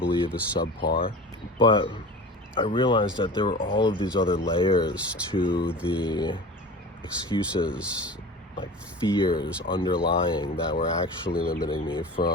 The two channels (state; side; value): normal; both; correlation 0.35